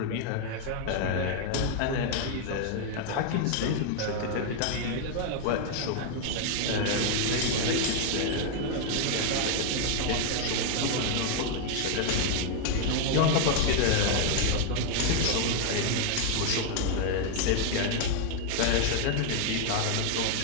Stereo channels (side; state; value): both; different; correlation 0.00